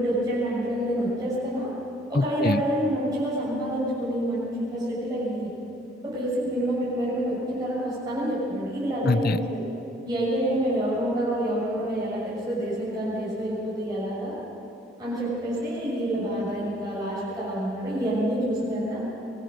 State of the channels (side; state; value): both; normal; correlation 0.61